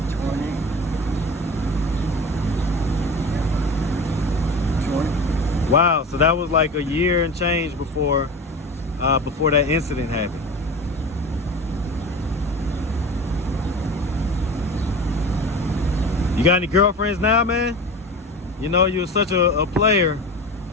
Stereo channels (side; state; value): both; normal; correlation 0.33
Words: Wow. So that was like a year and change before that incident happened. You got any girlfriends now, man? You know, you're such a player.